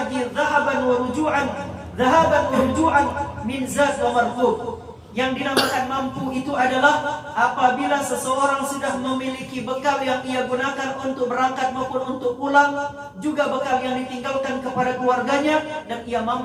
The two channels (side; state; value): both; identical; correlation 1.00